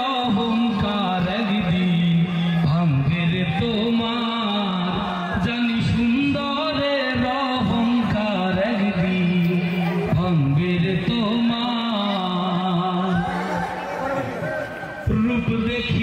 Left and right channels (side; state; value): both; identical; correlation 1.00